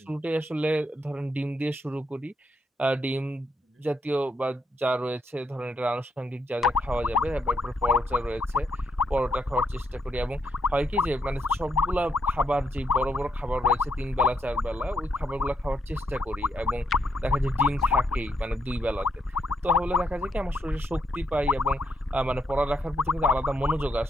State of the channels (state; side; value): normal; both; correlation 0.78